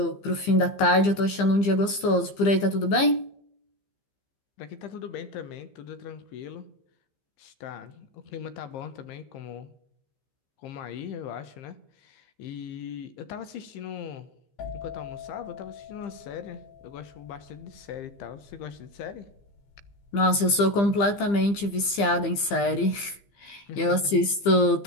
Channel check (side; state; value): right; late; 15 ms